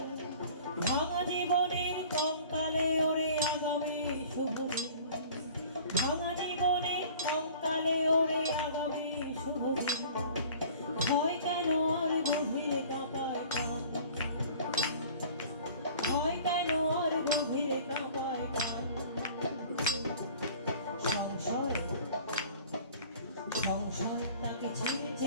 ভাঙা জীবনের কঙ্কালে ওরে আগামীর শুভ দিন, ভাঙা জীবনের কঙ্কালে ওরে আগামীর শুভ দিন। ভয় কেন আর গভীরে কাঁপায় প্রাণ, ভয় কেন আর গভীরে কাঁপায় প্রাণ। সংশয় সংশয় তাকে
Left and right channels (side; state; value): both; inverted; correlation -0.47